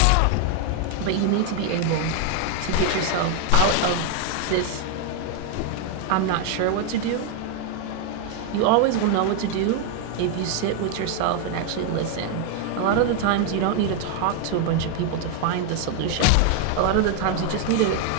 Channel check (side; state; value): both; different; correlation 0.00